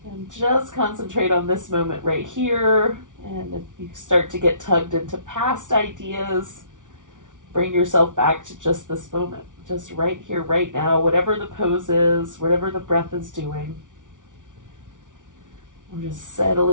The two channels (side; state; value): left; late; 0.87 ms